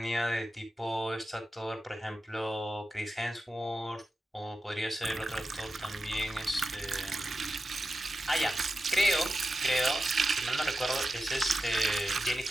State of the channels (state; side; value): normal; both; correlation 0.92